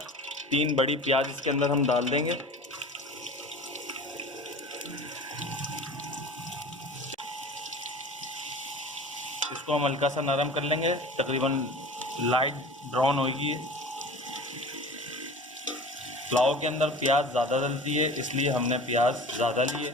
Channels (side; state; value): both; normal; correlation 0.39